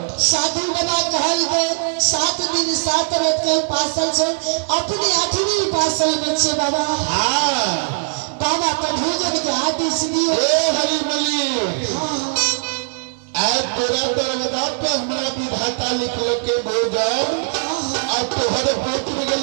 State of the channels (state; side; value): silent; left; 66 dB below the other